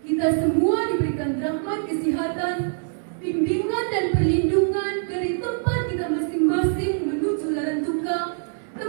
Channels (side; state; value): left; silent; 63 dB below the other